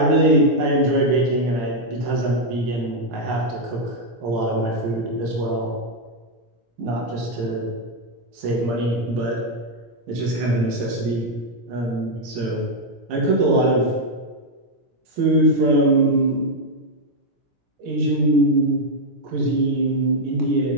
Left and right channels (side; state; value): left; late; 17 ms